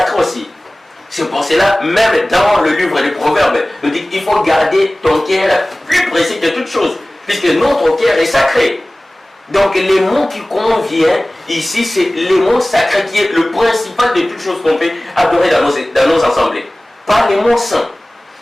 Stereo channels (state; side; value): normal; both; correlation 0.98